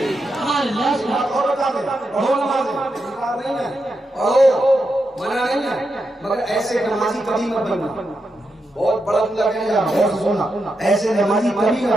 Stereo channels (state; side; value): normal; both; correlation 0.86